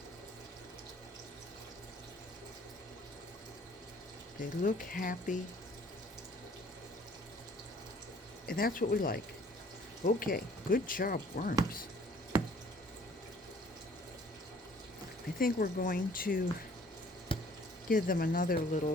They look happy. And that's what we like. Okay, good job, worms. I think we're going to give them another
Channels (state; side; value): normal; both; correlation 0.56